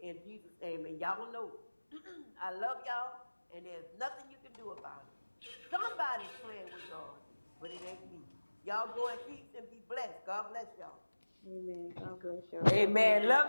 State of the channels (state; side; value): inverted; both; correlation -1.00